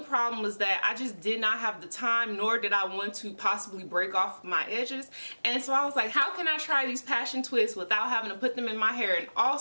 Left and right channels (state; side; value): inverted; both; correlation -1.00